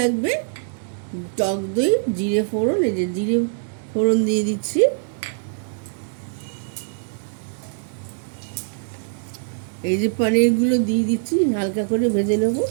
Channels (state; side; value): silent; left; digital silence